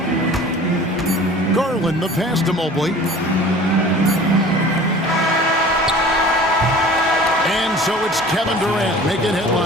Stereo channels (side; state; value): both; normal; correlation 0.44